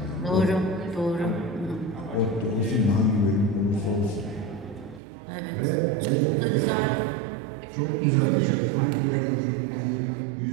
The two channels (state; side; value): drops out; left; at 5.0 s